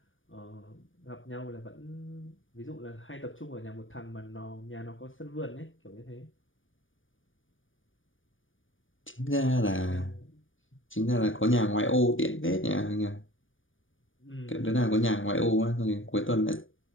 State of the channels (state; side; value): late; right; 0.57 ms